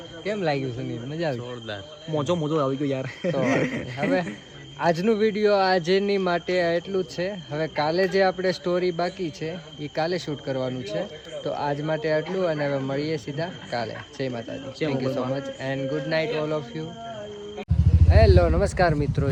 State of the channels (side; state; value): both; identical; correlation 1.00